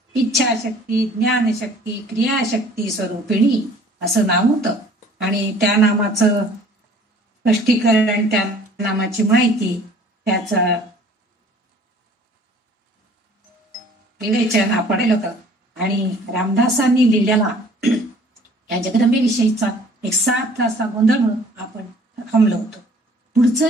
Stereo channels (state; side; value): normal; both; correlation 0.52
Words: इच्छाशक्ती ज्ञानशक्ती क्रियाशक्ती स्वरूपिणी असं नाव होतं। आणि त्या नामाचं स्पष्टीकरण, त्या नामाची माहिती, त्याचं विवेचन आपण केलं होतं। आणि रामदासांनी लिहिलेला या जगदंबेविषयीचा एक 7 तासा गोंधळ म्हणून आपण थांबलो होतो। पुढचं